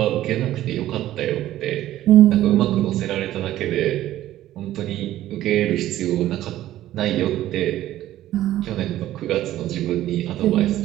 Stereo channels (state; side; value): quieter; left; 13.9 dB